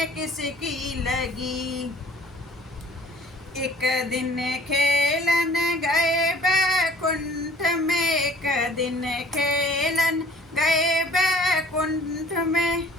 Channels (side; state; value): both; normal; correlation 0.52